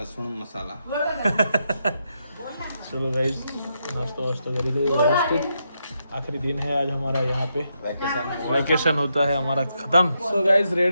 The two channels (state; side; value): inverted; both; correlation -0.82